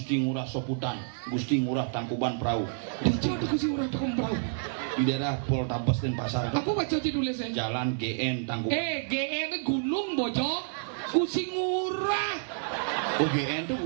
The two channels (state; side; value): silent; left; 59 dB below the other